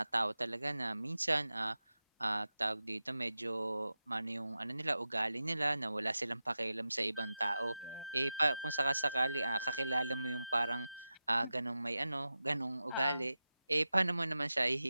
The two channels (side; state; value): both; inverted; correlation -0.93